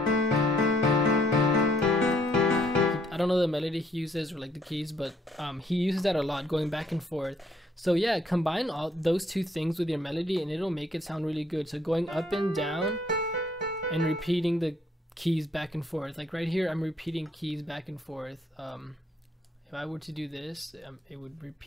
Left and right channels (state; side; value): normal; both; correlation 0.66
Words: I don't know the melody he uses or like the keys, but he uses that a lot, going back and forth. So yeah, combine all those two things with your melody and it'll make it sound really good. So going up and down and repeating the keys back and forth. Like right here, I'm repeating keys back and forth. If I were to do this, it would